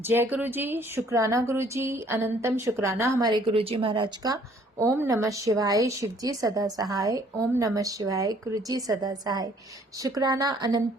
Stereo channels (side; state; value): both; normal; correlation 0.60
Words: गुरु जी, शुक्राना गुरु जी, अनंतम शुक्राना हमारे गुरु जी महाराज का। ओम नमः शिवाय, शिव जी सदा सहाय। ओम नमः शिवाय, गुरु जी सदा सहाय। शुक्राना,